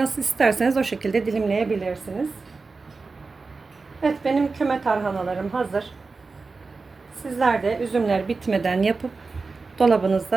isterseniz o şekilde dilimleyebilirsiniz. Evet, benim küme tarhanalarım hazır. Sizler de üzümler bitmeden yapıp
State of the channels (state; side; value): quieter; left; 4.1 dB